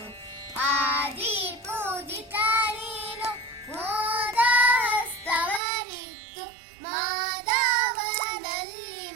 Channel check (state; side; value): drops out; left; at 5.6 s